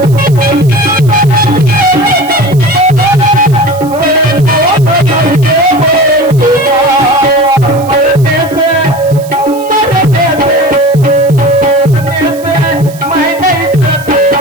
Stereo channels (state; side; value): noise; right; hiss, 20 dB below the sound